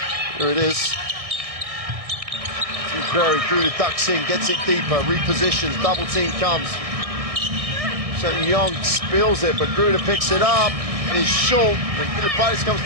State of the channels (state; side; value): late; left; 1.6 ms